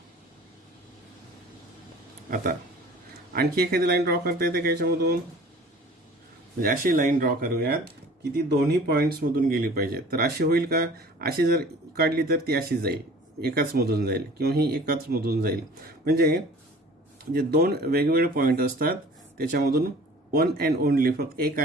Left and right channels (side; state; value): both; normal; correlation 0.46